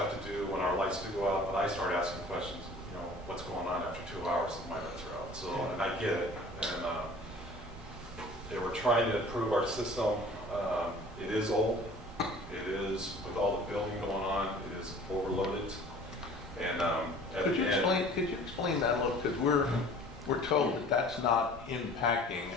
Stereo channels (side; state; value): both; normal; correlation 0.47